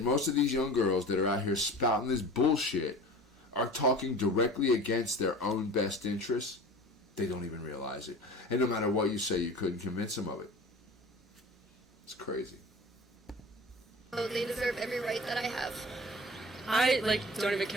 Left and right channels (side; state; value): both; normal; correlation 0.38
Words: most of these young girls that are out here spouting this bullshit are talking directly against their own best interests. They don't even realize it. And no matter what you say, you couldn't convince them of it. It's crazy. they deserve every right that I have. I don't even